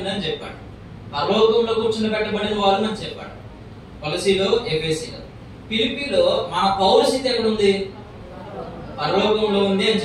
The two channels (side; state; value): both; identical; correlation 1.00